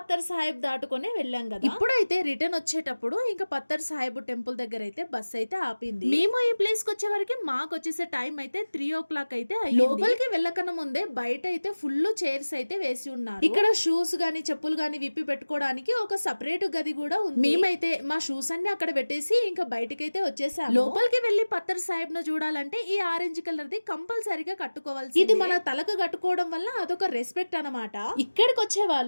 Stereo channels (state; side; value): inverted; both; correlation -1.00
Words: సాహిబ్ దాటుకునే వెళ్ళాం కదా. ఇప్పుడైతే రిటర్న్ వచ్చేటప్పుడు ఇంకా పత్తర్ సాహిబ్ టెంపుల్ దగ్గర అయితే బస్ అయితే ఆపింది. మేము ఈ ప్లేస్ కి వచ్చే వరకు మాకు వచ్చేసే టైం అయితే 3 o'clock అయితే అయ్యింది. లోపలికి వెళ్ళకన్నా ముందే బయట అయితే ఫుల్ చైర్స్ అయితే వేసి ఉన్నారు. ఇక్కడ షూస్ గానీ చెప్పులు గానీ విప్పి పెట్టుకోవడానికి ఒక సపరేట్ గది కూడా ఉంది. మేమైతే మా షూస్ అన్ని అక్కడ పెట్టేసి ఇంకా బయటకైతే వచ్చేసాము. లోపలికి వెళ్లి పత్తర్ సాహిబ్ ను చూడాలంటే ఈ ఆరెంజ్ కలర్ ది కంపల్సరీగా కట్టుకోవాల్సి. ఇది మన తలకు కట్టుకోవడం వల్ల అదొక రెస్పెక్ట్ అన్నమాట. ఇక్కడికి వచ్చే